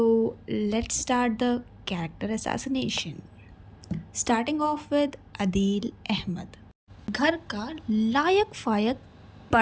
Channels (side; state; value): both; identical; correlation 1.00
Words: let's start the character assassination. Starting off with Adeel Ahmed, घर का लायक फायक